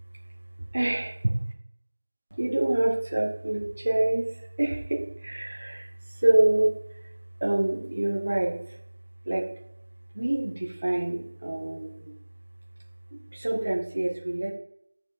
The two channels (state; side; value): inverted; both; correlation -1.00